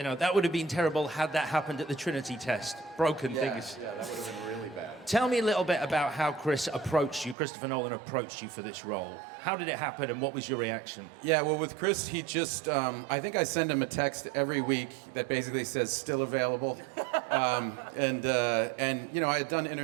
that would have been terrible had that happened at the Trinity test. Broken things. Yeah, that would have been really bad. Tell me a little bit about how Christopher Nolan approached you for this role. How did it happen, and what was your reaction? Yeah, well, with Chris, he just, I think I send him a text every week that basically says, still available. And I had done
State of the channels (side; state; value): left; drops out; at 7.4 s